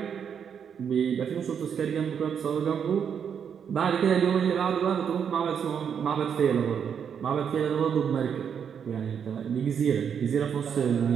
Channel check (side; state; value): left; quieter; 7.6 dB